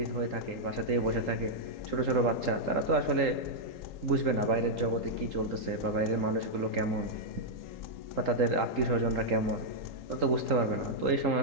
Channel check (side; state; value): left; late; 3.8 ms